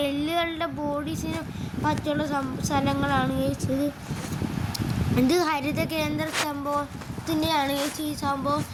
എല്ലുകളുടെ ബോഡീസിന് പറ്റുള്ള സ്ഥലങ്ങളാണ് ഗൈസ്. ഇത് ഹരിത കേന്ദ്ര സംഭവത്തിൻ്റെയാണ് ഗൈസ് ഈ സംഭവം.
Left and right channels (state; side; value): identical; both; correlation 1.00